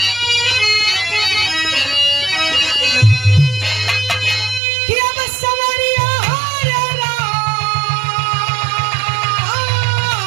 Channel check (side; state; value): left; drops out; at 4.6 s